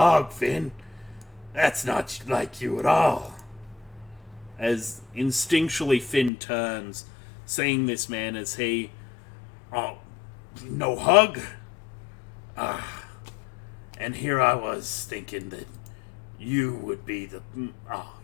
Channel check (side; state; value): right; drops out; at 6.3 s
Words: Finn. That's not like you at all. As instinctually Finn turns, seeing this man as he... Oh, no hug? And here I was thinking that you would be